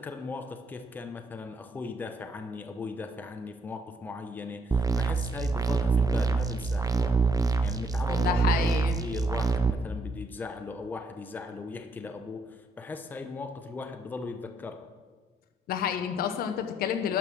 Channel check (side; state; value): both; normal; correlation 0.71